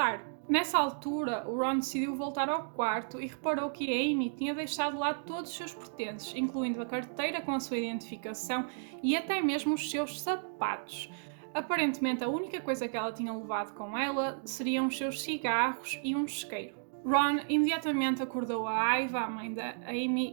Nessa altura, o Ron decidiu voltar ao quarto e reparou que a Amy tinha deixado lá todos os seus pertences, incluindo a carteira com a sua identificação e até mesmo os seus sapatos. Aparentemente, a única coisa que ela tinha levado com ela seriam os seus cigarros e um isqueiro. Ron imediatamente acordou a Aiva, a mãe da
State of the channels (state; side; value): silent; left; digital silence